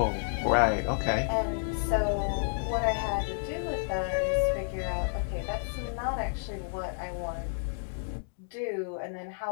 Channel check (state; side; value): silent; right; digital silence